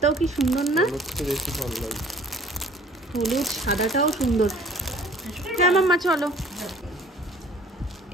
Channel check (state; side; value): normal; both; correlation 0.52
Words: কি সুন্দর না? হলুদটা বেশি ভালো লাগে। হলুদ সাদাটাও সুন্দর। হ্যাঁ মাম্মা চলো।